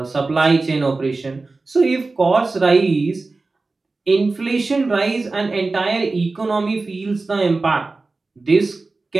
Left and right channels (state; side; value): quieter; left; 3.6 dB